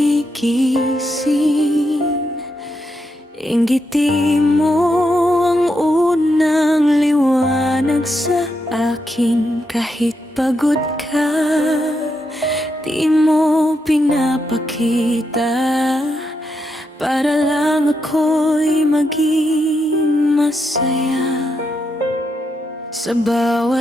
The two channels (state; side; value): normal; both; correlation 0.82